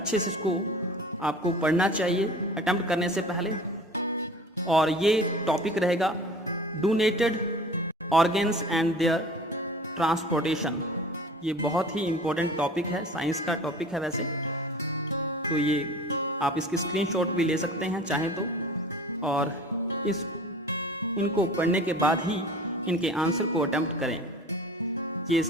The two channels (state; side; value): normal; both; correlation 0.42